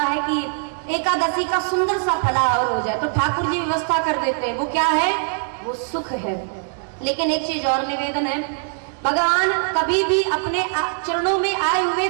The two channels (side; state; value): left; silent; digital silence